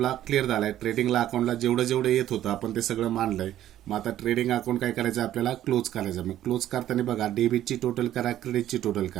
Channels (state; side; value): quieter; left; 12.5 dB